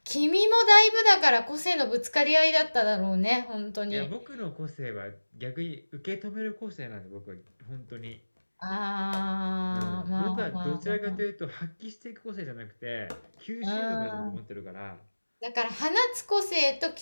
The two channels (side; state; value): both; inverted; correlation -1.00